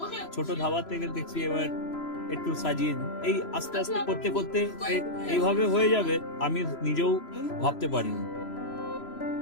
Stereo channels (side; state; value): right; late; 3.0 ms